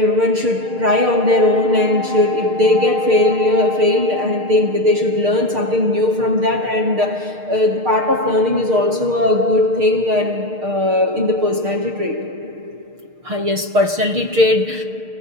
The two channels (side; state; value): left; late; 6.6 ms